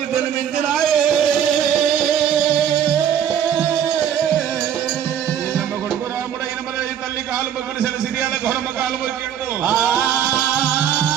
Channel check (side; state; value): left; quieter; 9.3 dB